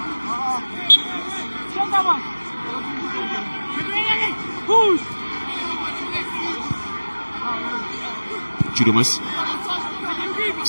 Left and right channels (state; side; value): inverted; both; correlation -1.00